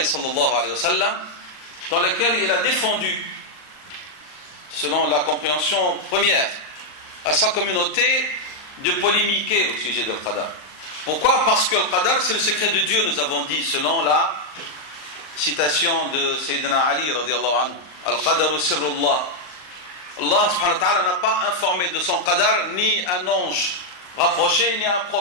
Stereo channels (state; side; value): late; right; 39 ms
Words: sallallahu alayhi wa sallam, dans lesquels il a défendu, selon la compréhension première, à sa communauté de polémiquer au sujet du Qadar. Pourquoi? Parce que le Qadar, c'est le secret de Dieu, nous avons dit, selon la citation de Sayyidina Ali radiyallahu anhu. Al-Qadaru sirrullah. Allah subhanahu wa ta'ala n'a pas informé de son Qadar ni un ange rapproché, ni un